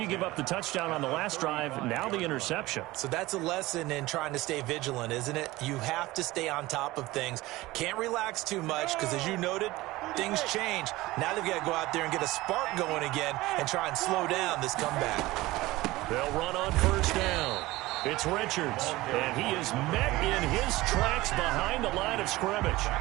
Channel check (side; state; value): left; quieter; 18.9 dB